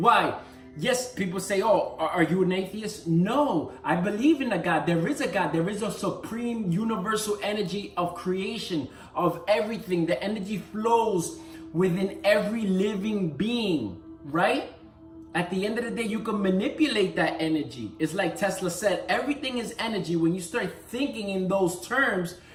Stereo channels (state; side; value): identical; both; correlation 1.00